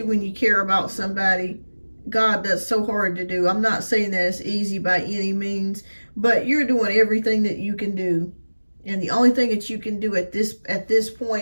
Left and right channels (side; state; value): both; inverted; correlation -1.00